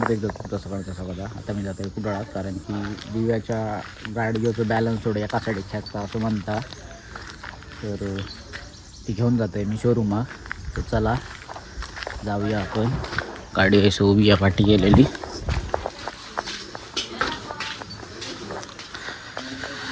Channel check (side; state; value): both; identical; correlation 1.00